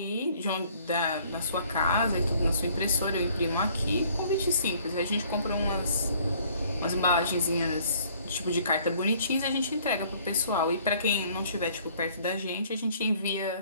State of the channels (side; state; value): both; inverted; correlation -0.58